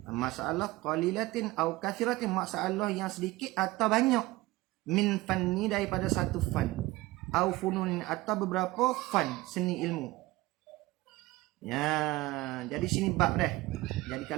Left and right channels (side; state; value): left; quieter; 19.6 dB